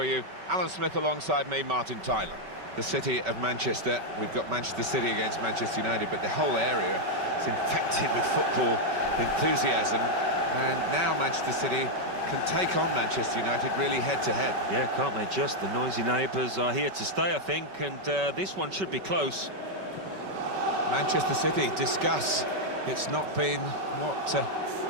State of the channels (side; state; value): left; late; 5.2 ms